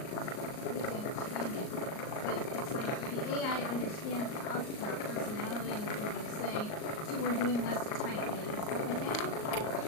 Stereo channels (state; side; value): late; right; 38 ms